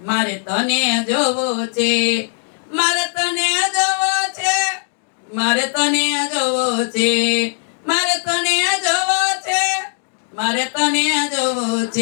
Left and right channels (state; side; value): silent; right; digital silence